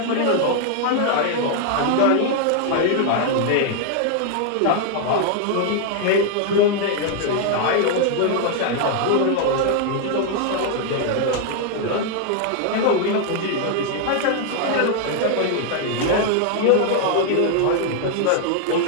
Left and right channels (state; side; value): different; both; correlation 0.00